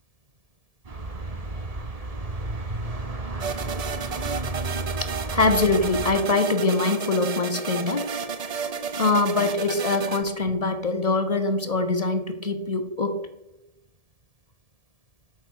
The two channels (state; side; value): late; left; 1.7 ms